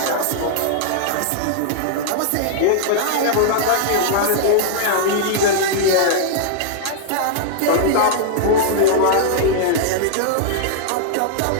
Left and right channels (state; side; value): different; both; correlation -0.01